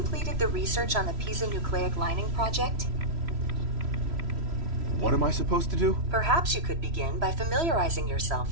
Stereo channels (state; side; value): late; left; 3.1 ms